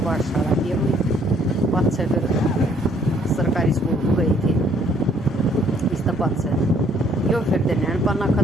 पाठशाला की अपनी 5 से फिर सरकारी स्कूल को गई थी इस तरह 5 से यो। फिर दिन पन्ना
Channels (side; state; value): both; normal; correlation 0.64